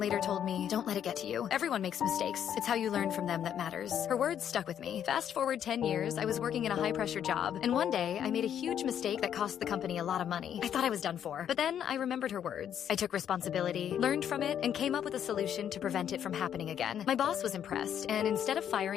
told me, "Don't let it get to you. Everyone makes mistakes. It's how you learn from them that matters." Her words stuck with me. Fast forward 10 years, I was working in a high-pressure job, and one day, I made a huge mistake that cost the company a lot of money. I thought I was done for. But then, I remembered her words. I took responsibility, learned from it, and came up with a solution to prevent it from happening again. My boss was impressed, and instead of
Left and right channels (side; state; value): right; quieter; 9.4 dB